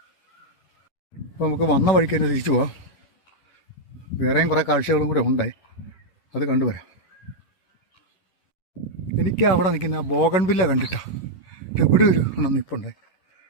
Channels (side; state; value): right; late; 11 ms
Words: അപ്പോൾ നമുക്ക് വന്ന വഴിക്ക് തന്നെ തിരിച്ചു പോവാം. വേറെയും കുറേ കാഴ്ചകളും കൂടെ ഉണ്ടേ, അത് കണ്ടുവരാം. എനിക്ക് അവിടെ നിൽക്കുന്ന ആ ബോഗൺവില്ല കണ്ടിട്ടാ ഇവിടെ ഒരു എണ്ണം നിൽപ്പുണ്ടേ.